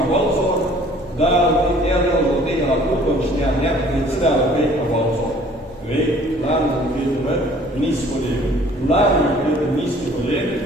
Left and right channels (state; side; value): normal; both; correlation 0.54